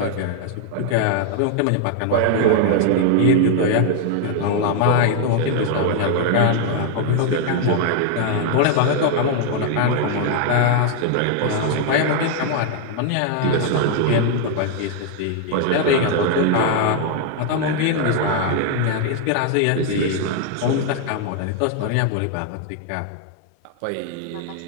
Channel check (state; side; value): different; both; correlation 0.00